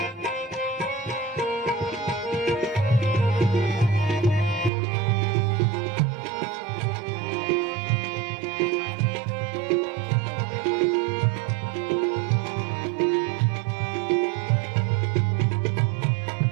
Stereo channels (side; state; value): left; drops out; at 4.7 s